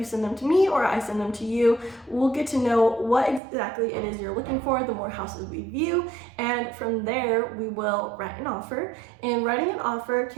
send them to me or I send them to you, we'll get to know what exactly it is you're looking for, the more houses we view. And from there, we will write an offer. And writing an offer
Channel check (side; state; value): left; drops out; at 3.4 s